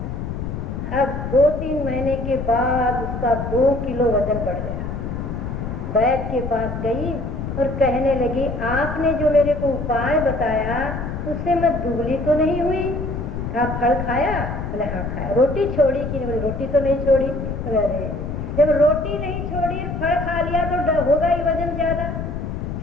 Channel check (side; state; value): left; noise; rumble, 5 dB below the sound